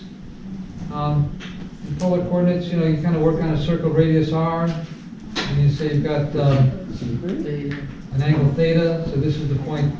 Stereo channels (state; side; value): identical; both; correlation 1.00